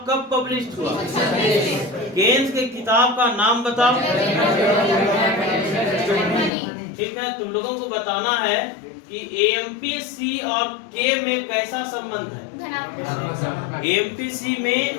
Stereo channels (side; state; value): right; drops out; at 6.5 s